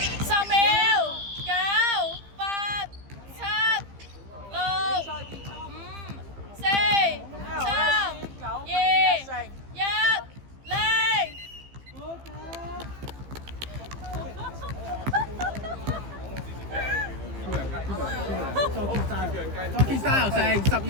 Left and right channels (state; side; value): late; left; 15 ms